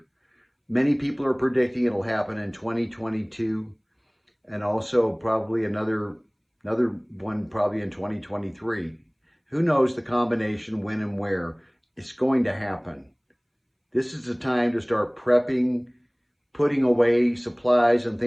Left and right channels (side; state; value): both; identical; correlation 1.00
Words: Many people are predicting it'll happen in 2022 and also probably another one probably in 2023. Who knows the combination when and where it's going to happen. This is the time to start prepping, putting away supplies and